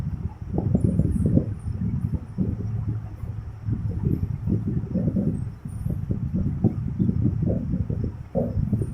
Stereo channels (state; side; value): identical; both; correlation 1.00